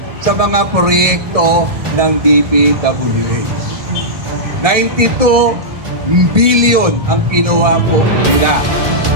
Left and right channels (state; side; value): late; left; 1.7 ms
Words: sa mga proyekto ng DPWH. 92 billion ang kinuha po nila.